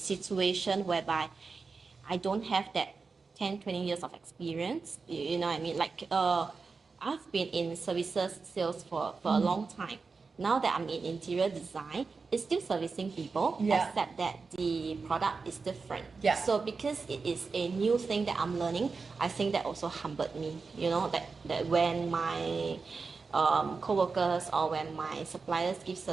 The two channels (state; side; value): quieter; left; 4.5 dB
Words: whereby I don't have that 10, 20 years of experience. You know what I mean? Like I've been in services sales for a long time. Now that I'm in interior design, it's still servicing people, except that the product is different. Yeah. So because it is a new thing that I'm learning, I think that also humbled me. That when my co-workers or when my suppliers give